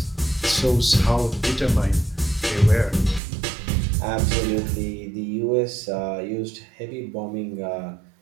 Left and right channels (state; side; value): drops out; left; at 3.2 s